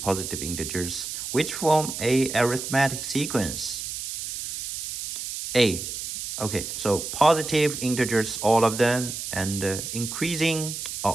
positive integers, which form a arithmetic sequence. A. Okay, so positive integers, all of them, and increasing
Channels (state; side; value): noise; right; hiss, 6 dB below the sound